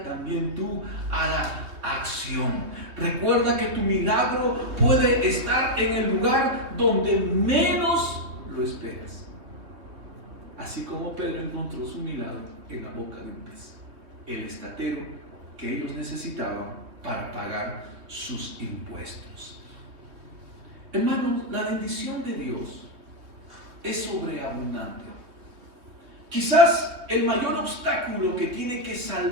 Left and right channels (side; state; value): left; late; 3.3 ms